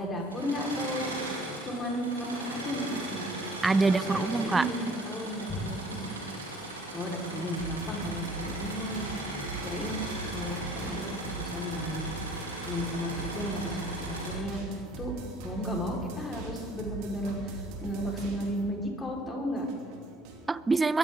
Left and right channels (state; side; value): normal; both; correlation 0.54